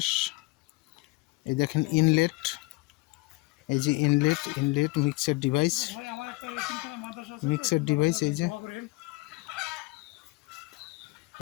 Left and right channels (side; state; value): right; quieter; 23.3 dB